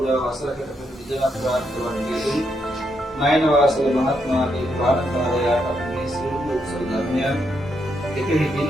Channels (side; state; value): both; normal; correlation 0.79